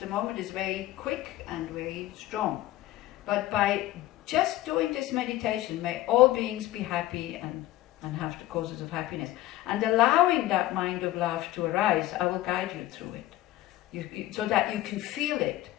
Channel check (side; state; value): right; quieter; 15.7 dB